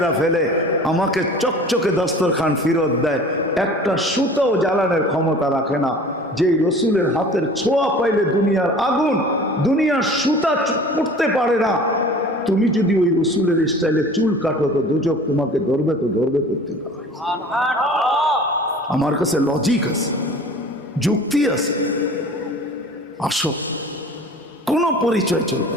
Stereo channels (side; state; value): both; normal; correlation 0.43